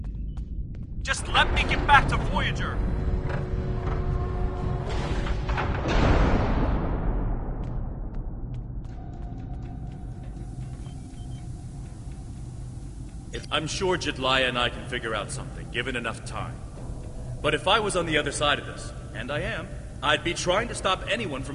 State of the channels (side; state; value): both; identical; correlation 1.00